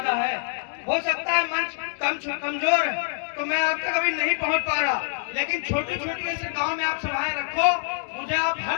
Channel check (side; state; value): right; silent; digital silence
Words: है। हो सकता है मंच कमजोर है तो मैं आप तक अभी नहीं पहुंच पा रहा, लेकिन छोटी छोटी ऐसे गांव में आप सभाएं रखो, मुझे आप हर